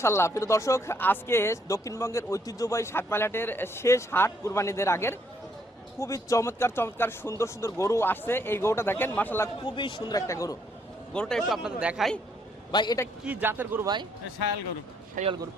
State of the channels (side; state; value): both; normal; correlation 0.70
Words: প্রিয় দর্শক, আজকে দক্ষিণবঙ্গের ঐতিহ্যবাহী সাতমাইলহাটের শেষ হাট, কুরবানিদের আগের। খুবই চমৎকার সুন্দর গরু আসছে। এই গরুটা দেখেন, মাশাআল্লাহ খুবই সুন্দর একটা গরু। গরুটা একটু আপনাদের দেখাই। ভাই, এটা কি জাতের গরু ভাই? শায়াল গরু। শায়াল গরু।